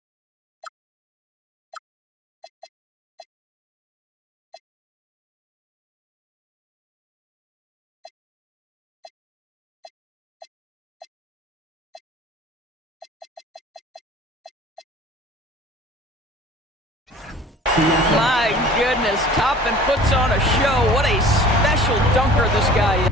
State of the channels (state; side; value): normal; both; correlation 0.46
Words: My goodness, Toppin puts on a show. What a special dunker this guy is.